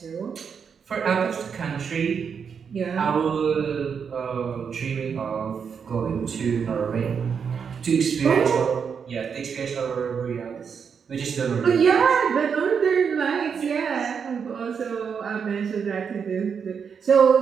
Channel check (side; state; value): left; quieter; 6.6 dB